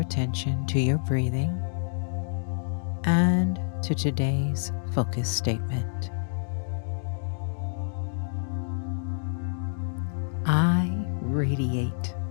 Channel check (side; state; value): right; silent; digital silence